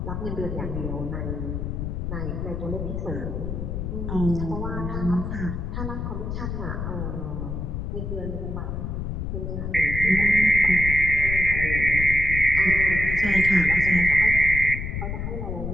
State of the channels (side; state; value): left; noise; rumble, 4 dB below the sound